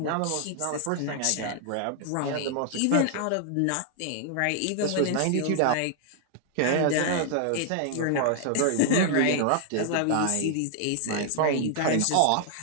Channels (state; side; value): different; both; correlation 0.00